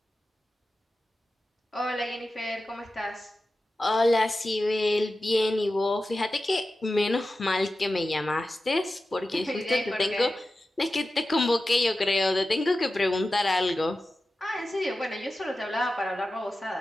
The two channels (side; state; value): both; normal; correlation 0.94